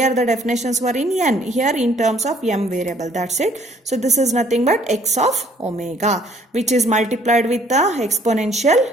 the definitions were in n, here in terms of m variable, that's it. So this is nothing but x of omega, which is multiplied with the exponential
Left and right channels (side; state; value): both; normal; correlation 0.61